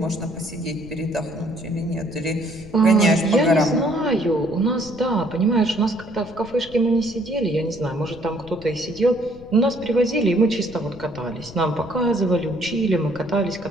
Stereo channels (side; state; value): left; noise; rumble, 19 dB below the sound